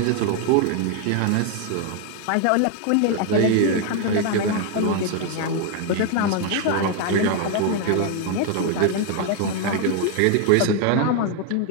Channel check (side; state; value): both; different; correlation 0.01